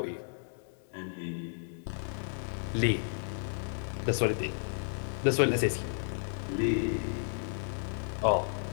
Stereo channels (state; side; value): silent; right; digital silence